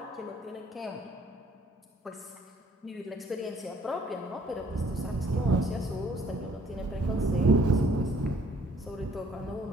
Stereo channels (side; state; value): both; normal; correlation 0.61